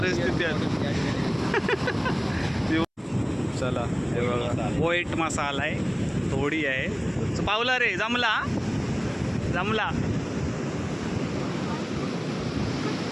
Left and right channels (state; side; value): identical; both; correlation 1.00